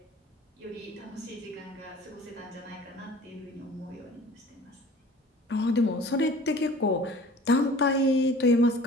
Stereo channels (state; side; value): normal; both; correlation 0.46